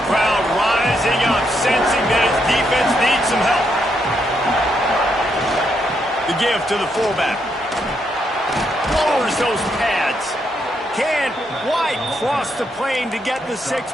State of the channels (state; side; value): normal; both; correlation 0.78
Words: crowd rising up, sensing that his defense needs some help. The give to the fullback. Lowers those pads. Can't quite cross the plane to get the 6,